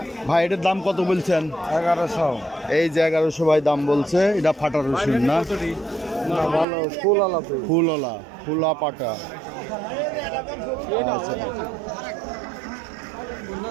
ভাই এটার দাম কত বলছেন? 1100। এই যে 1100 ভাই দাম বলছে। এটা ফাটা রসুন না? ভালো ফুলওয়ালা ফুলওয়ালা, ফুলা পাটা। আচ্ছা,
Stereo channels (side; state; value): left; drops out; at 6.7 s